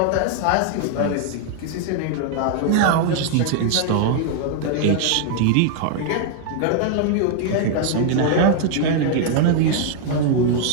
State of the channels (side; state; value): both; different; correlation 0.00